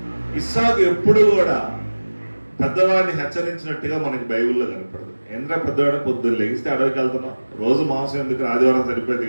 ఇస్సాకు ఎప్పుడు కూడా పెద్దవాడిని హెచ్చరించినట్టుగా మనకి బైబిల్లో కనపడదు. ఎందుకంటే పెద్దవాడు పొద్దున్న లెగిస్తే అడవికి వెళ్తున్నాం, రోజు మాంసం ఎందుకు, ఆదివారం సరిపోయింది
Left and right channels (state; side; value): inverted; both; correlation -1.00